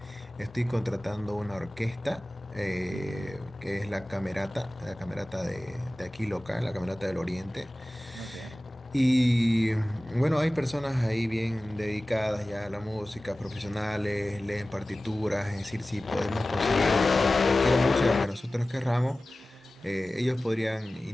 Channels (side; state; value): both; normal; correlation 0.97